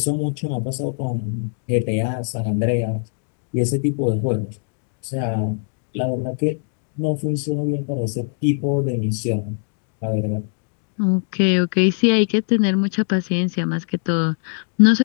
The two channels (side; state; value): right; silent; 64 dB below the other